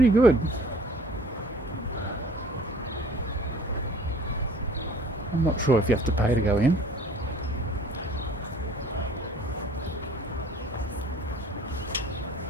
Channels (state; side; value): normal; both; correlation 0.51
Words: good. I'm not sure if you have to pay to go in.